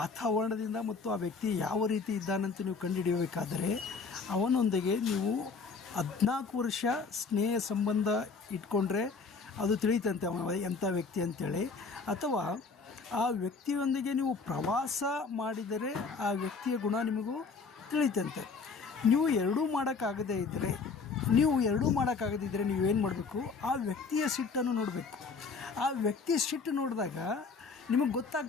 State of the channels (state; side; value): quieter; right; 4.8 dB